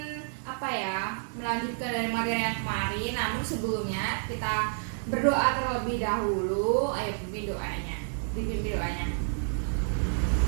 melanjutkan dari materi yang kemarin. Namun sebelumnya kita berdoa terlebih dahulu. Ayo pimpin doanya. Dipimpin doanya.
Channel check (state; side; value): silent; left; digital silence